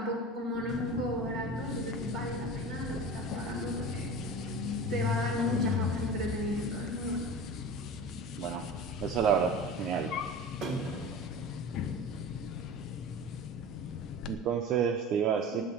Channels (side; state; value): both; normal; correlation 0.34